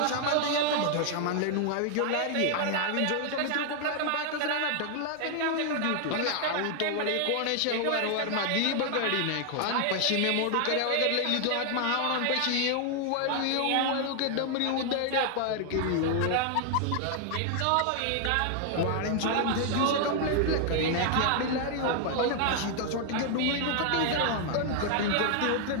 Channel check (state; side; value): different; both; correlation 0.00